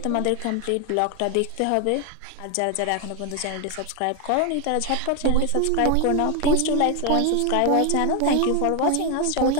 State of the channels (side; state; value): both; different; correlation 0.01